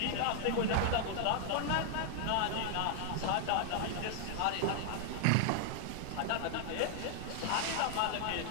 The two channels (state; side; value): different; both; correlation -0.01